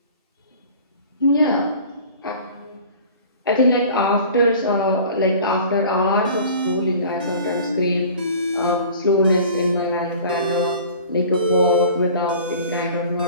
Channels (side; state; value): both; inverted; correlation -0.44